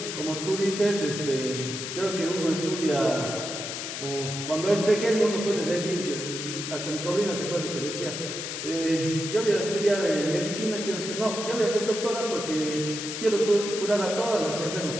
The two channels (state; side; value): noise; left; hiss, 6 dB below the sound